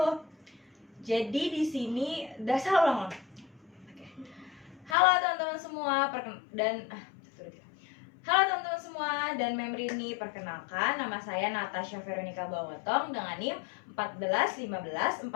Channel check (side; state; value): right; drops out; at 5.0 s